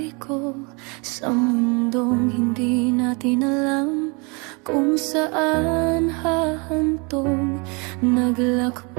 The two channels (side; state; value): left; quieter; 31.1 dB